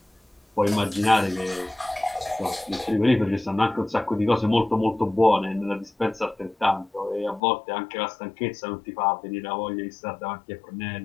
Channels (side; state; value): right; drops out; at 7.4 s